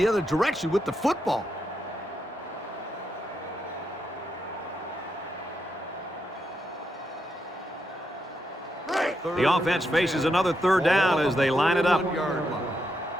other direction with the football. The offense faces another third down as they line it up.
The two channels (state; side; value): normal; both; correlation 0.82